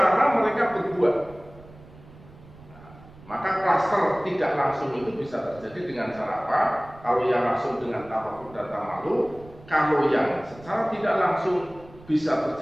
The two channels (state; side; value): noise; right; rumble, 21 dB below the sound